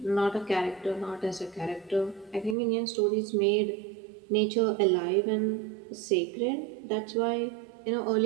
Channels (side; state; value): left; drops out; at 2.6 s